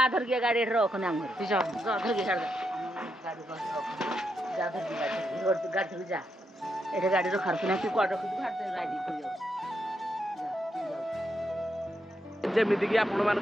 धर के गाड़ी रख ना घर तू जा धर के गाड़ी जा धर के गाड़ी जा एठे गाड़ी रो खरख ना तू कोड रख तू भात राइडिंग कर जा जेमिति कि आपण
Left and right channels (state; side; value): normal; both; correlation 0.82